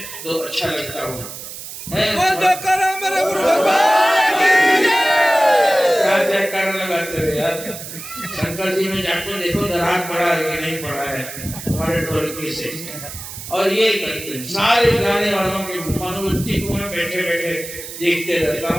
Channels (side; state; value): right; noise; hiss, 11 dB below the sound